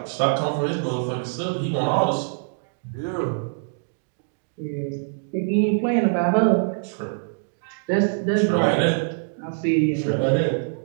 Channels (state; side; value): silent; left; digital silence